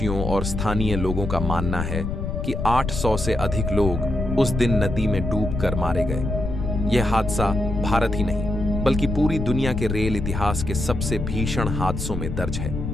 और स्थानीय लोगों का मानना है कि 800 से अधिक लोग उस दिन नदी में डूबकर मारे गए। यह हादसा भारत ही नहीं बल्कि पूरी दुनिया के रेल इतिहास के सबसे भीषण हादसों में दर्ज है।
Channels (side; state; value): left; noise; rumble, 4 dB below the sound